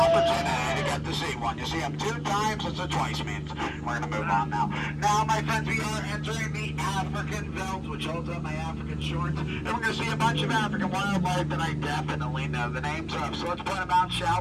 to get to see one. You see them 2 times, that's what twice means. We're going to move on now. Now, my friends, we are entering the African belt, which holds up my African shorts. And we're going to see a bunch of African wildlife that I definitely know the names of. So let's point them out, shall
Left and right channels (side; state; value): both; identical; correlation 1.00